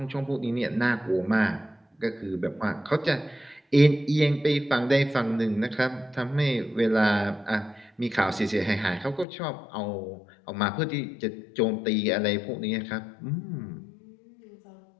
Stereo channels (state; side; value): drops out; right; at 9.2 s